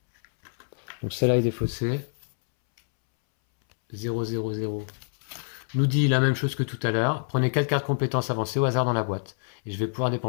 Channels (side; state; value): right; silent; 61 dB below the other